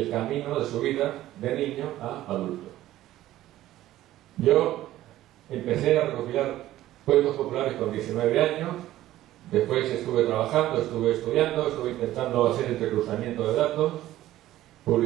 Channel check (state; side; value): quieter; left; 14.5 dB